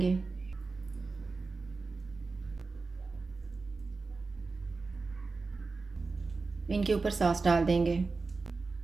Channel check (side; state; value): left; quieter; 4.0 dB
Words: इनके ऊपर सॉस डाल देंगे,